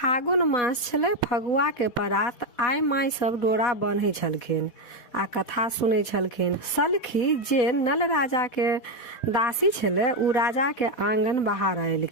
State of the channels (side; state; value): right; late; 4.1 ms